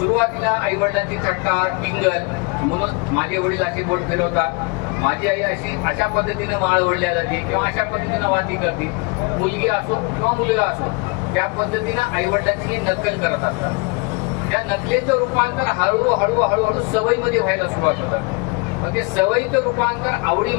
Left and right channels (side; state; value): right; quieter; 28.5 dB